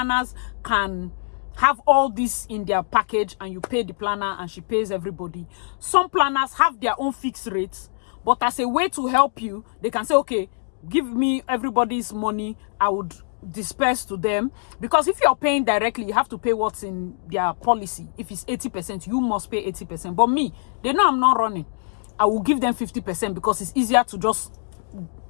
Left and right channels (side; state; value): right; silent; digital silence